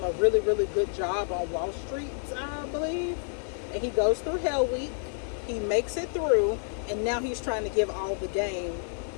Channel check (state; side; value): silent; right; 59 dB below the other